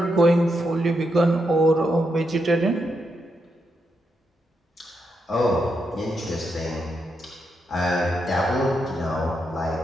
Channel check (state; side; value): normal; both; correlation 0.82